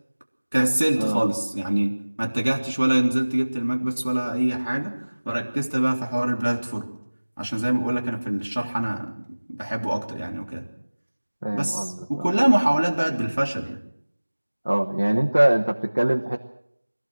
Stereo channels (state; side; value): inverted; both; correlation -1.00